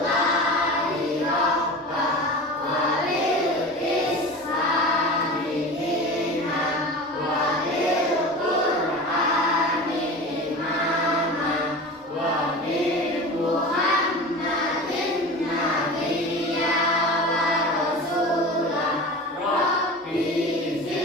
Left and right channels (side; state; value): both; normal; correlation 0.33